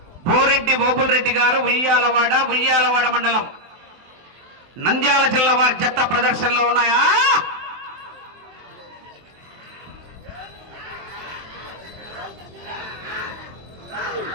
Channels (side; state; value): left; late; 23 ms